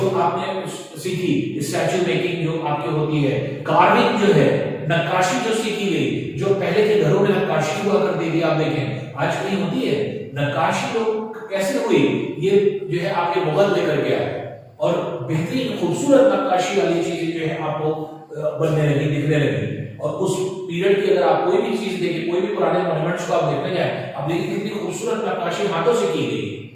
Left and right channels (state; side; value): identical; both; correlation 1.00